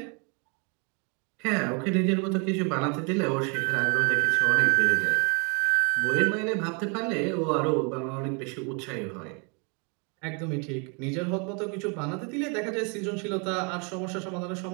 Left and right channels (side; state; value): left; quieter; 34.7 dB